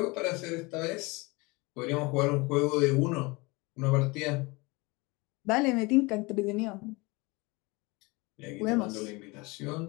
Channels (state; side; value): quieter; right; 25.2 dB